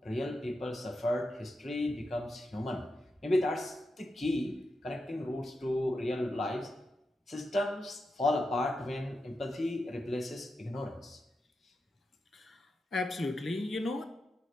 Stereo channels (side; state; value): both; normal; correlation 0.88